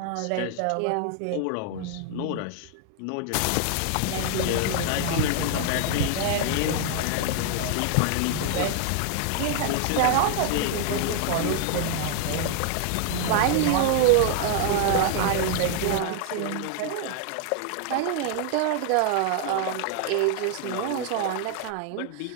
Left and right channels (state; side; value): different; both; correlation 0.00